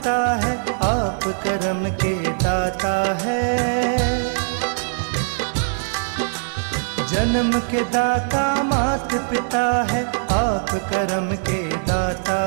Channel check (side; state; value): left; silent; digital silence